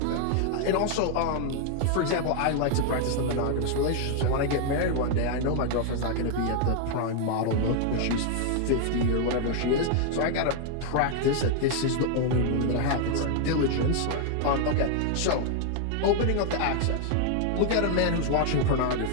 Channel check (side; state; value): both; different; correlation 0.00